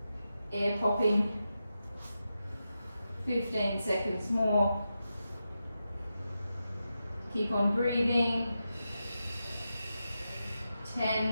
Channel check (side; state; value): both; inverted; correlation -0.89